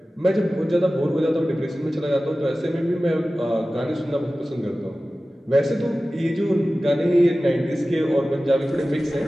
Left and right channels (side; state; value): both; normal; correlation 0.96